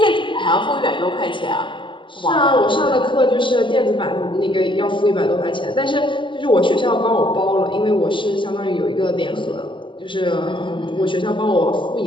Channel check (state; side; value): late; right; 0.24 ms